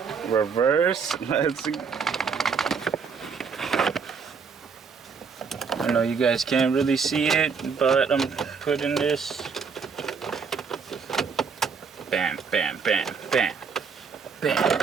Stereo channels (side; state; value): left; quieter; 5.7 dB